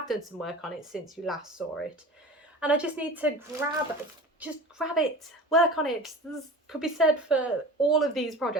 done some work on it since you last saw it. And I just need to grab it, work on it. This could be said for all of these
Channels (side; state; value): both; normal; correlation 0.36